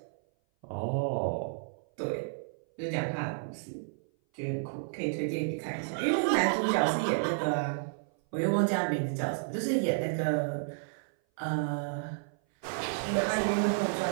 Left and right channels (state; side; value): silent; left; 56 dB below the other